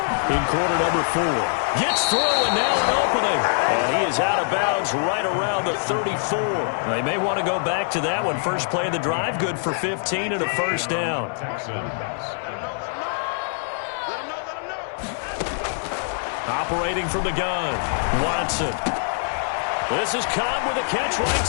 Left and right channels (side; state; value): right; silent; digital silence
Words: quarter number 4. Gets through and now an opening. And he is out of bounds right around the 34. They may want to go back to that one. First play of the drive, good for 15 and a 1st down. Operating from the gun, Watson. This is Cobb with a catch right